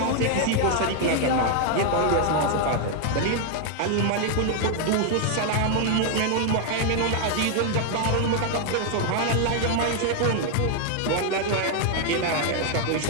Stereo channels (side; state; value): both; different; correlation 0.00